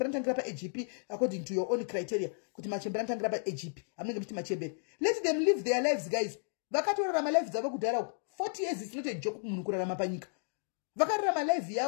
mtangira pa AGP according to your own criteria. Kuti machembera mtangira pa AGP. Amene mti machembera. Let them live their lives guys. Vakatorarama life dzavo kudhara 40 years is not a joke munhu kurarama panyika. Vakararama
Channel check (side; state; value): right; silent; digital silence